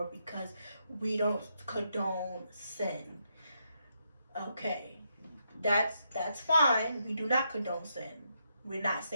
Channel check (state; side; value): inverted; both; correlation -0.80